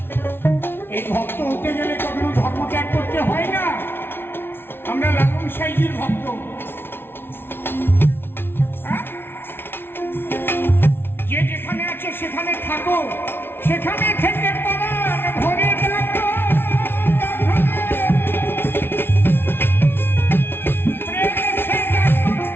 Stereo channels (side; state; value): right; late; 0.11 ms